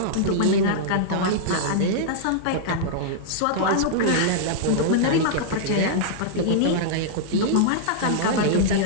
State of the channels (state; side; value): different; both; correlation -0.02